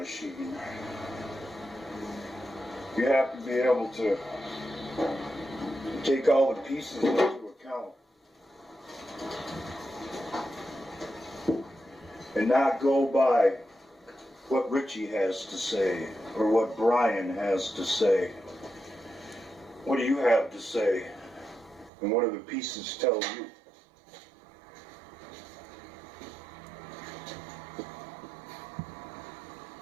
you have to be able to take all the pieces into account and not go by what Richie has to say or what Brian has to say. What do you have to say? And what do the pieces tell you?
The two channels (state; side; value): drops out; left; at 21.9 s